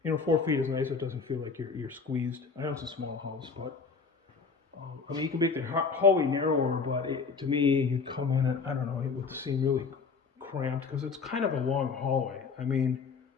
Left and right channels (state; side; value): quieter; right; 5.0 dB